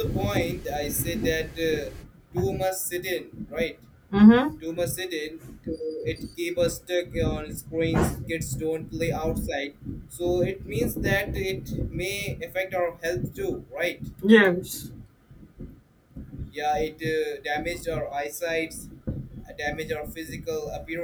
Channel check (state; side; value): identical; both; correlation 1.00